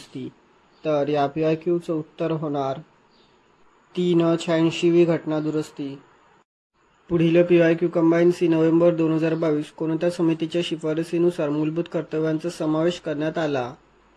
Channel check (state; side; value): identical; both; correlation 1.00